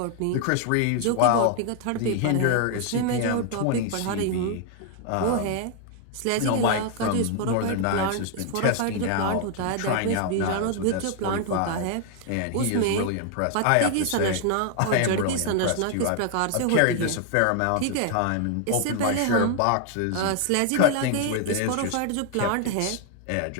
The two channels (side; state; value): both; different; correlation 0.00